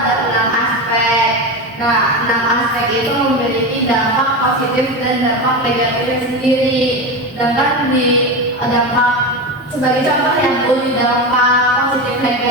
6 aspek. Nah, 6 aspek itu memiliki dampak positif dan dampak negatifnya sendiri. Sedangkan di dampak sebagai contoh yang Bu, di dampak positif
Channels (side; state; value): both; normal; correlation 0.20